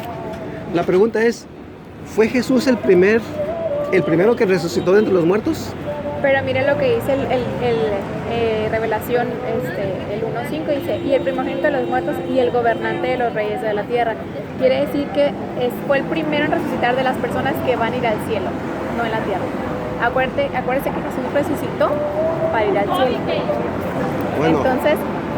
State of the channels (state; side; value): identical; both; correlation 1.00